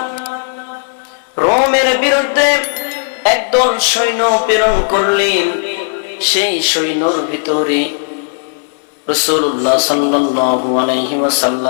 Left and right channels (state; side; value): silent; right; digital silence